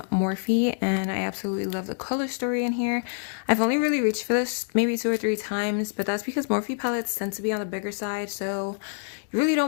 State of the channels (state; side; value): silent; right; digital silence